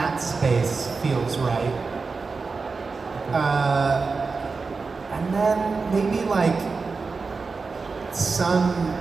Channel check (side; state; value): left; quieter; 4.4 dB